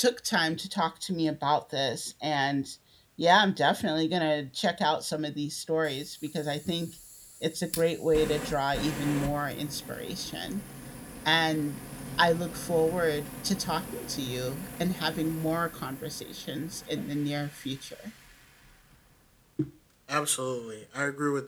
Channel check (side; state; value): both; identical; correlation 1.00